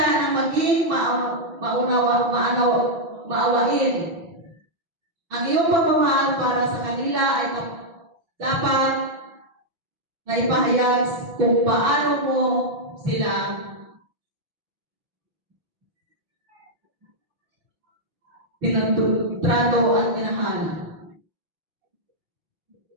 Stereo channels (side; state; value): left; late; 5.9 ms